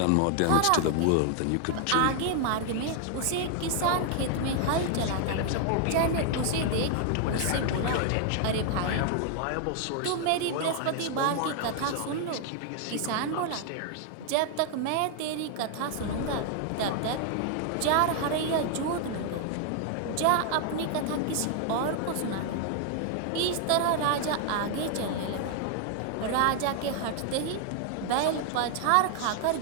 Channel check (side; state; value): both; different; correlation 0.00